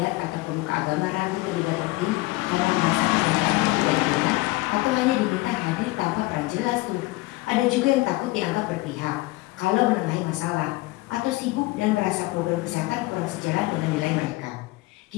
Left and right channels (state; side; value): quieter; right; 20.8 dB